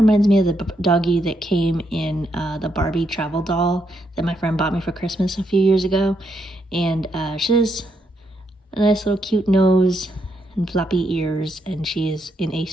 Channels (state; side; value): normal; both; correlation 0.78